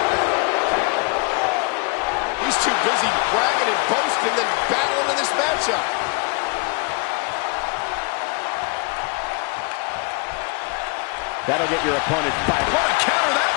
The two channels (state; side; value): quieter; right; 31.4 dB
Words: He's too busy bragging and boasting than battling in this matchup. That'll get your opponent fired. What a counter that